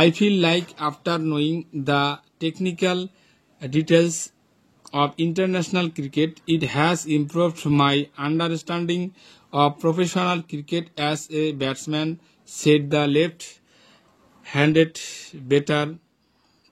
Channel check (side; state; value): both; identical; correlation 1.00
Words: feel like after knowing the technical details of international cricket, it has improved my understanding of professional cricket as a batsman, said the left-handed batter